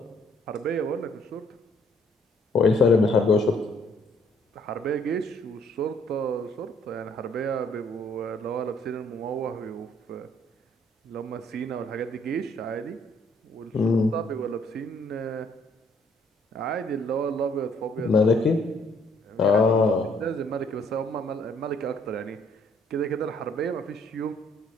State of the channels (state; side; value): normal; both; correlation 0.64